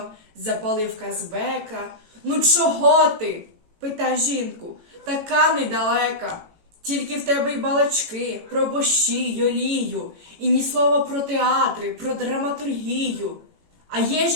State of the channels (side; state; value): left; late; 18 ms